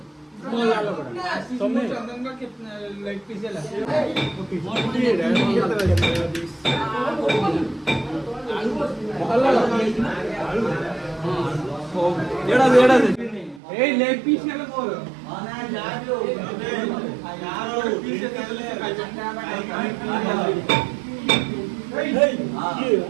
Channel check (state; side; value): drops out; left; at 13.6 s